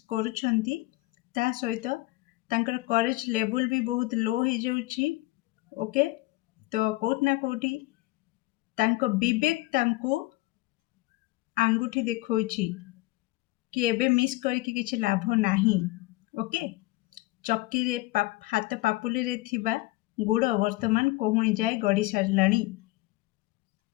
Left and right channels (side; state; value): right; quieter; 20.4 dB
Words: करूछंती ता सहित तांकर करेज लेवल भी बहुत लो हो जाउची ओके तो कोट ना कोठी तांको विवेक तांको आंगुठी देखौची कि एबे मिस करके किछि लाभ नाही ओके चक्की रे हाथ पापुली रे थिबा गुड़ वर्तमान कोहुणी जाए गड़ी सारलाणी